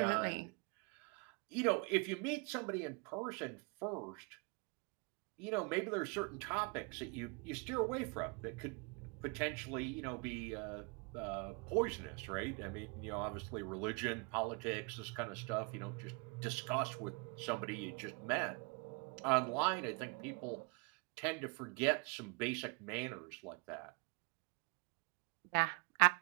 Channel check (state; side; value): quieter; left; 32.5 dB